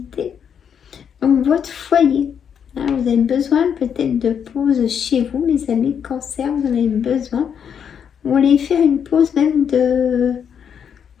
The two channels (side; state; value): right; quieter; 7.8 dB